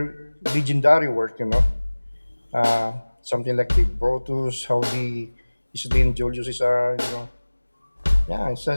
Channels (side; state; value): both; inverted; correlation -1.00